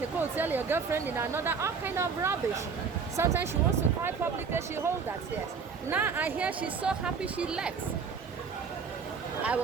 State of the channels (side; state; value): left; quieter; 5.6 dB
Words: a hotel, your girlfriend in another, all kind of rubbish. Sometimes she wants to cry publicly, she holds that tears. Now I hear she's so happy she left. I